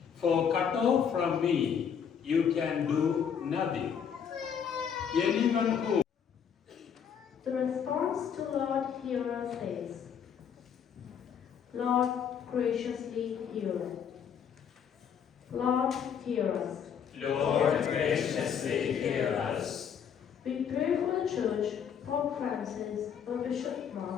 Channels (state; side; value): quieter; right; 7.7 dB